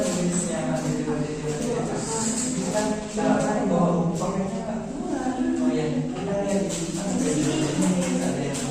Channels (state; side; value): identical; both; correlation 1.00